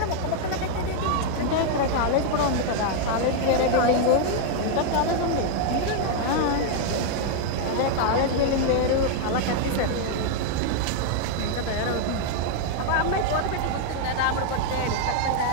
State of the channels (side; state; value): both; different; correlation 0.00